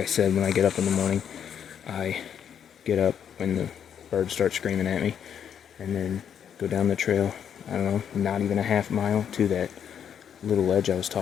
said, when I get up in the morning, I get up when the birds start screaming at me, and then go down the trail, I don't know, not even a half mile to that little ledge I was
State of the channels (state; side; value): quieter; right; 8.5 dB